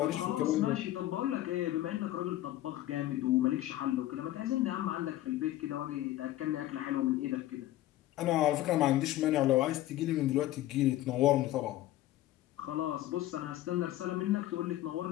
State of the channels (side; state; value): right; quieter; 14.7 dB